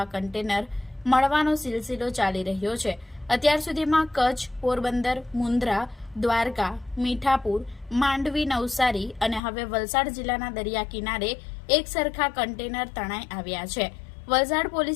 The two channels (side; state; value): right; drops out; at 9.4 s